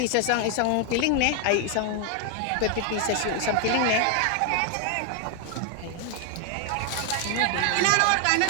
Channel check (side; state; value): both; different; correlation 0.01